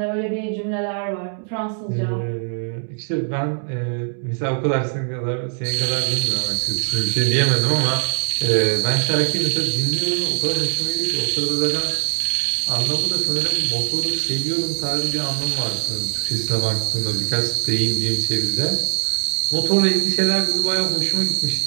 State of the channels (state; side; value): silent; left; 65 dB below the other